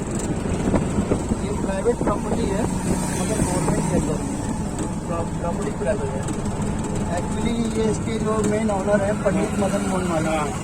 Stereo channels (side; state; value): both; identical; correlation 1.00